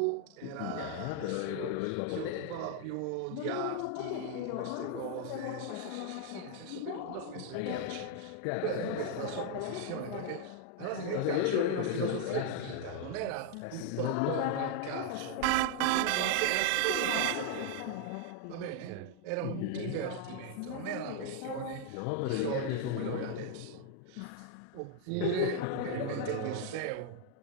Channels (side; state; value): both; different; correlation 0.00